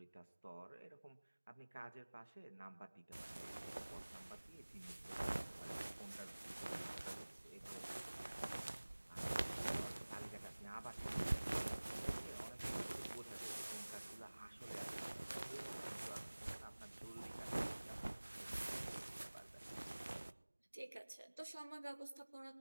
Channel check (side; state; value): both; inverted; correlation -1.00